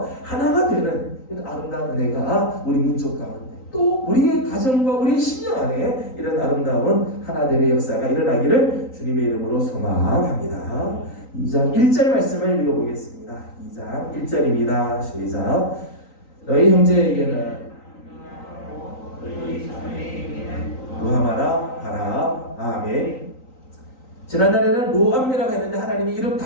하나가 되는 이런 아름다운 은혜가 우리 민족 가운데 또 우리의 가정과 우리의 신령 안에 이런 아름다운 하나됨의 역사가 일어나기를 주님의 이름으로 소망합니다. 2장 1절 말씀을 읽어보겠습니다. 2장 1절입니다. 시작. 너희 형제에게는 루하마라 하라. 아멘. 지난달에는 로암미라고 했는데 하나님이 이름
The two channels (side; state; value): right; late; 3.9 ms